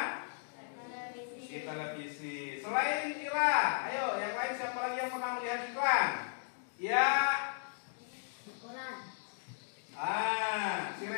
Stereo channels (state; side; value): silent; right; digital silence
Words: Di televisi. Selain Ira, ayo yang lain siapa lagi yang pernah melihat iklan? Ya. Koran. Si